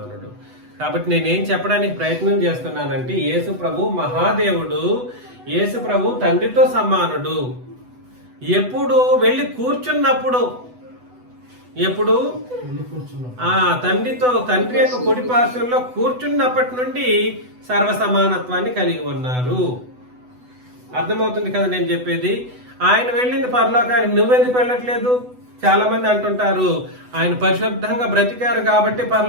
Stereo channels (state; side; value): late; left; 8.0 ms